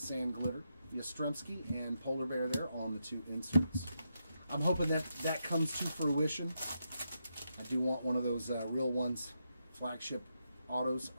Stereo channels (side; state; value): both; inverted; correlation -0.83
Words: Glitter. Yastrzemski and Polar Bear there on the 2 inserts. I'm hoping that comes to fruition. I do want one of those real ones, flagship autos.